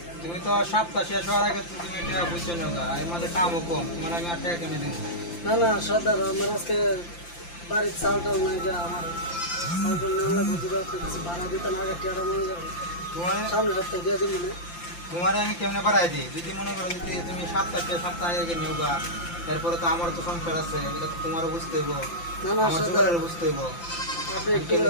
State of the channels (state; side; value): late; right; 5.8 ms